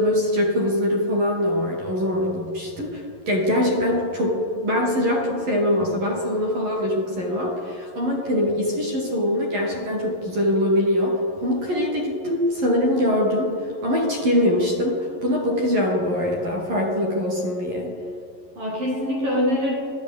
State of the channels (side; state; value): left; late; 11 ms